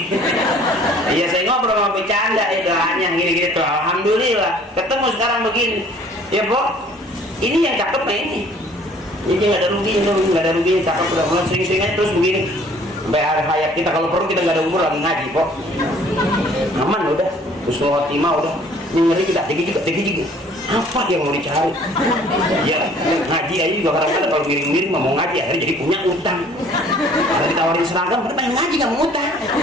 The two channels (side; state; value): both; normal; correlation 0.55